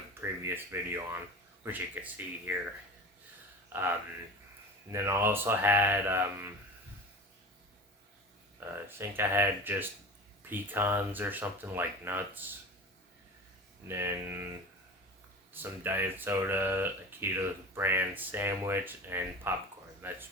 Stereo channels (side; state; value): both; normal; correlation 0.33